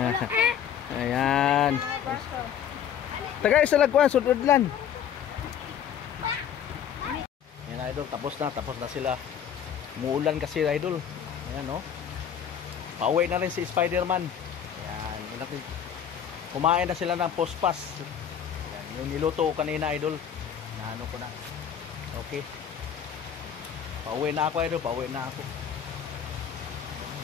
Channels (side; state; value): right; quieter; 8.7 dB